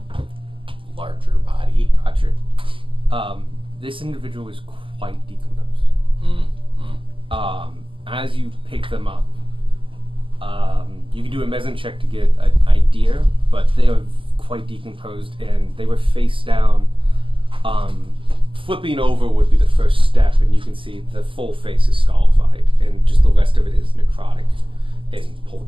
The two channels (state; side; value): late; left; 0.25 ms